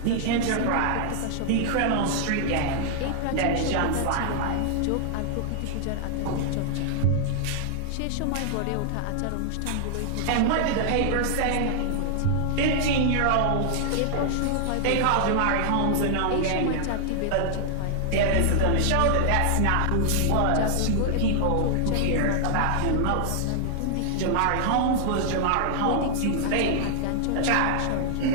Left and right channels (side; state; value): both; different; correlation -0.01